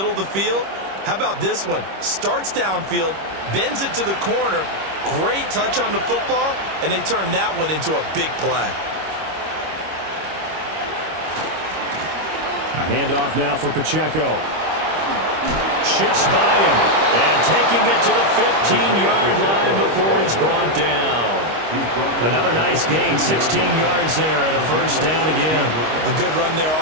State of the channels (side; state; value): left; late; 25 ms